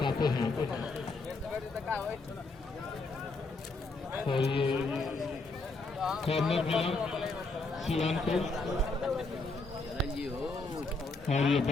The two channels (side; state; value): right; quieter; 3.5 dB